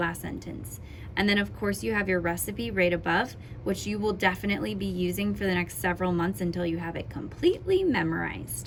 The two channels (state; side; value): identical; both; correlation 1.00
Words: sentence. And then of course you have your recipe right above, which you will definitely be using for the next several months until you have it completely